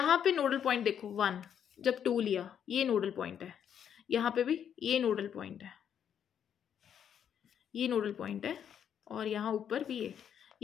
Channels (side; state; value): right; quieter; 8.7 dB